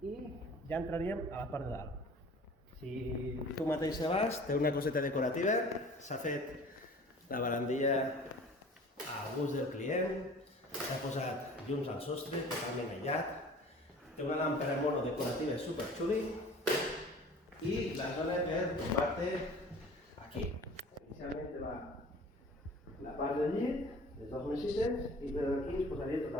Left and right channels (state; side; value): normal; both; correlation 0.46